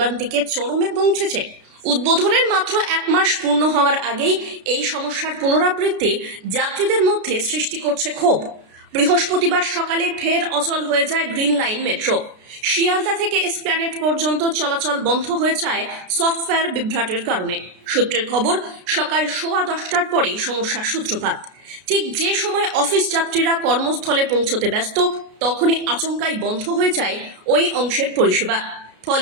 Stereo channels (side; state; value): left; late; 33 ms